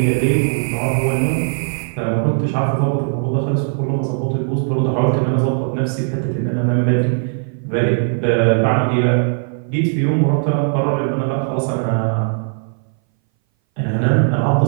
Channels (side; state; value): left; silent; 61 dB below the other